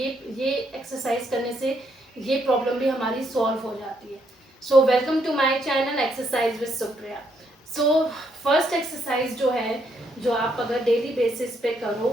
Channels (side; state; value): both; normal; correlation 0.74